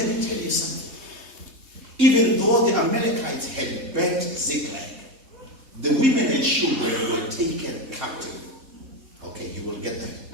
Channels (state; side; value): late; left; 3.3 ms